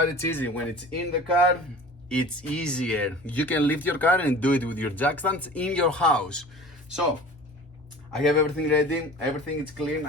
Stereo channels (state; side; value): normal; both; correlation 0.41